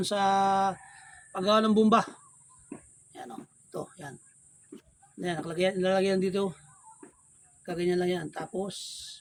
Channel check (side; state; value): both; identical; correlation 1.00